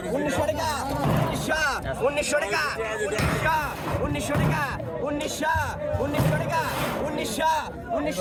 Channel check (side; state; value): both; identical; correlation 1.00